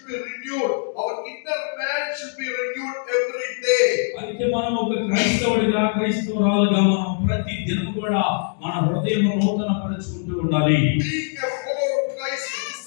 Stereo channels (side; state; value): right; silent; 64 dB below the other